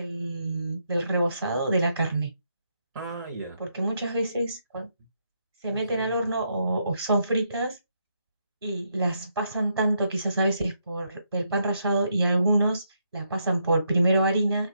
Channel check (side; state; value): both; inverted; correlation -0.78